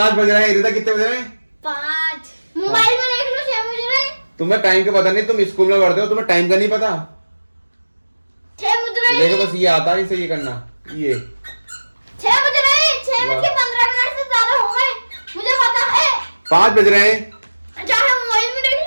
बज रहे हैं। रिदा कितने बज रहे हैं? 5 मोबाइल में देख लो, 6 बज रहे हैं। तुम्हें टाइम का पता नहीं, तुम स्कूल में पढ़ते हो, तुम्हें टाइम का नहीं पता। 6 बज रहे हैं। देखो बस ये आता है इसे ये करना, ये 6 बज रहे हैं। 6 बज के 15 मिनट से ज्यादा हो गए, मुझे पता है। 5 बज रहे हैं। चाहे मोबाइल में देख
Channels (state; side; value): inverted; both; correlation -1.00